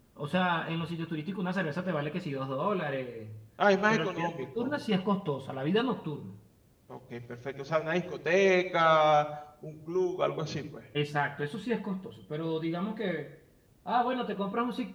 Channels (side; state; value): both; identical; correlation 1.00